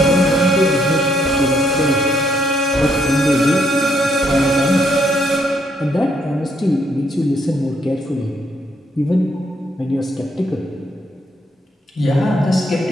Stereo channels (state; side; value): normal; both; correlation 0.71